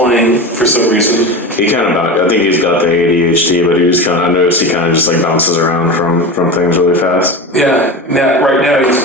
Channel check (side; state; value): both; normal; correlation 0.26